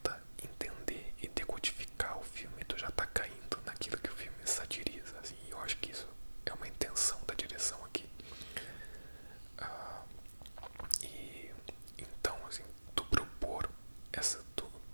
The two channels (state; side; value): inverted; both; correlation -1.00